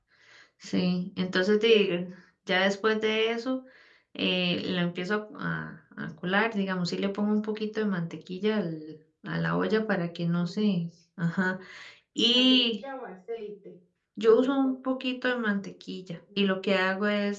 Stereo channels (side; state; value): both; identical; correlation 1.00